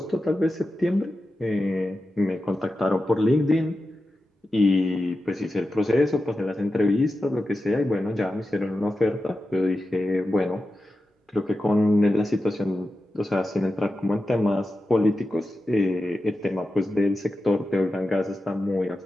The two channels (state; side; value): normal; both; correlation 0.92